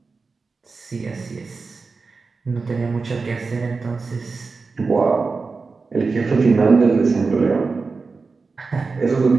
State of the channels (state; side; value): quieter; left; 4.3 dB